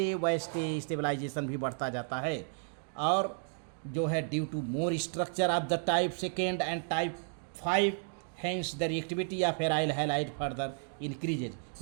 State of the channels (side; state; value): left; silent; 56 dB below the other